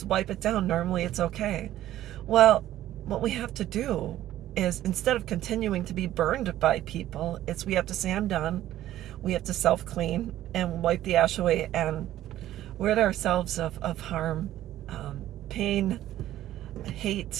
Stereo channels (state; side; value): quieter; left; 13.5 dB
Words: wipe it down, normally it's okay. Well, what we have to do is, instead of continuing to be burned by people, we have to say, I'm done. We have to self-clean and wipe the ash away and rid ourselves of harm, pain,